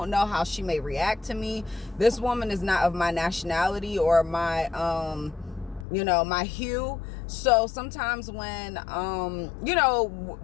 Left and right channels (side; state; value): right; drops out; at 5.9 s